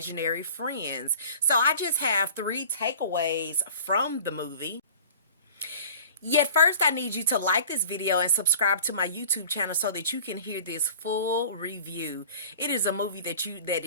friends. So I just have three takeaways from the movie. Yet first I need you to like this video and subscribe to my YouTube channel so that you can hear this full review. It is a movie that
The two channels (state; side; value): inverted; both; correlation -0.45